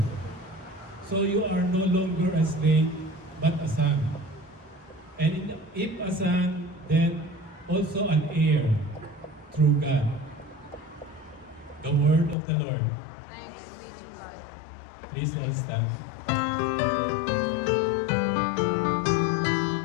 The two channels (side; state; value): right; drops out; at 12.4 s